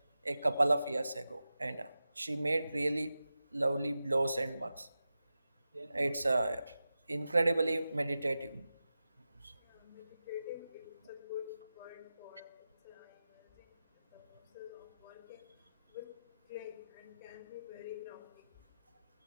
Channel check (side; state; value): both; inverted; correlation -0.93